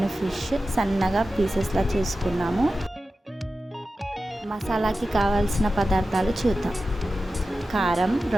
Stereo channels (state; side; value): normal; both; correlation 0.93